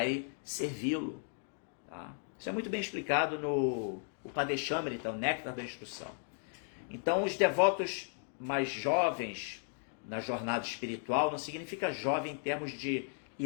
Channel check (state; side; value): silent; right; 54 dB below the other